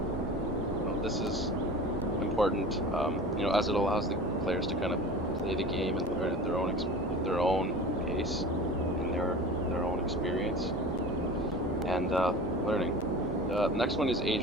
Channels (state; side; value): normal; both; correlation 0.36